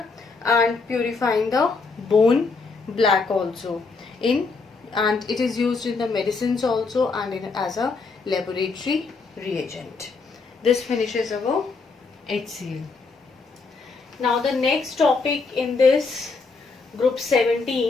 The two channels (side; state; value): right; quieter; 4.3 dB